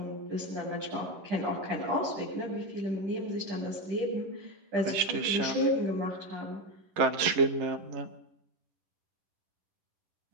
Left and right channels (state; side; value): late; left; 11 ms